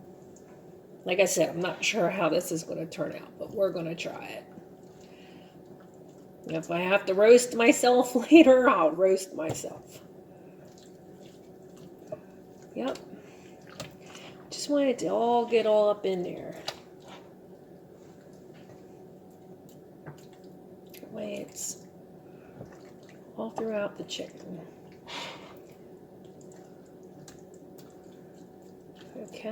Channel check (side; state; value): both; identical; correlation 1.00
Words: Like I said, I'm not sure how this is going to turn out, but we're going to try it. If I have to roast myself later, I'll roast myself. Yep. Just want it to all get all up in there. That way it's all throughout the chicken.